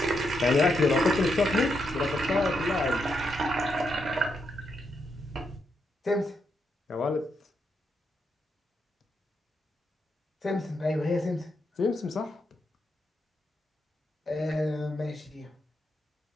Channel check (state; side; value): normal; both; correlation 0.81